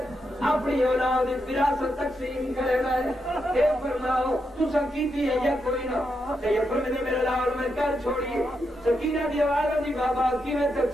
अपनी औलाद विरासत तकसीम करेगा ये फरमाओ तू संकीती है या कोई ना ये फरमाने मेरा लाल मैं कर छोड़ी सकीना दी आवाज दी बाबा की मैं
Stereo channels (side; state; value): both; normal; correlation 0.83